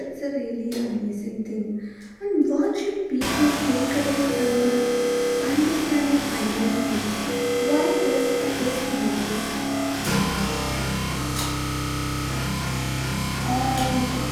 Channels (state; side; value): identical; both; correlation 1.00